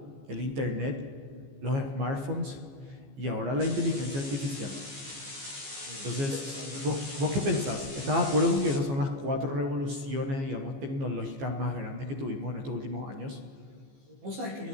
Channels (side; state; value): left; late; 15 ms